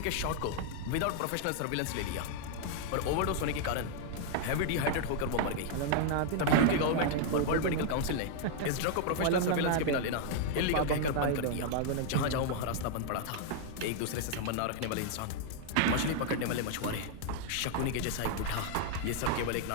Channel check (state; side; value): different; both; correlation 0.00